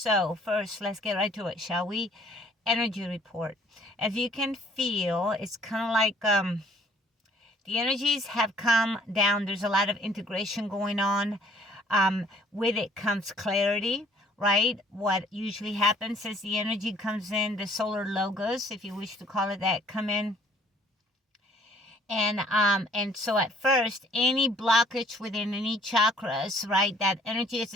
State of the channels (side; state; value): both; normal; correlation 0.60